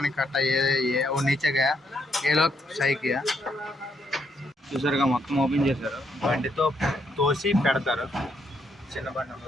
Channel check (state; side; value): normal; both; correlation 0.75